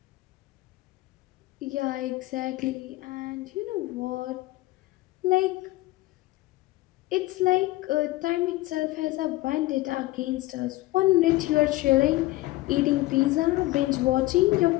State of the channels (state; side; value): quieter; right; 18.5 dB